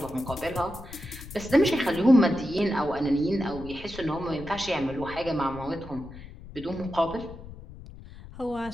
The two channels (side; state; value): left; noise; rumble, 15 dB below the sound